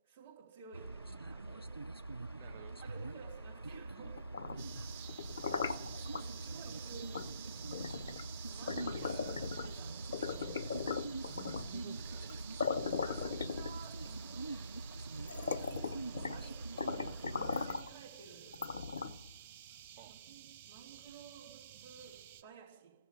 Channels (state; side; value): inverted; both; correlation -0.71